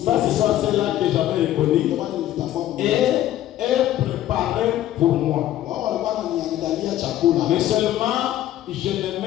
Ça, c'est ça, celle-là que j'avais reconnue. Et elle préparait pour moi. Mais seulement, je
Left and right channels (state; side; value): quieter; right; 13.1 dB